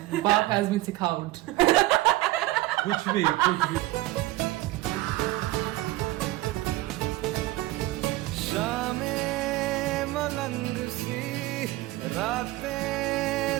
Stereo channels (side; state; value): left; quieter; 18.2 dB